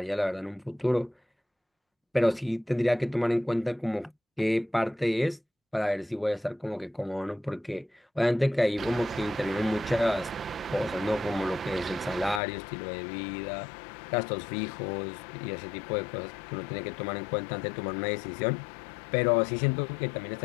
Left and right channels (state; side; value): drops out; right; at 12.4 s